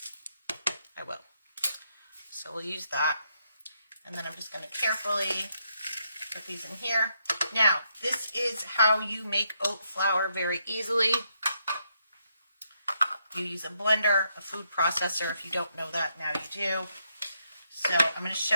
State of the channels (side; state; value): both; inverted; correlation -0.78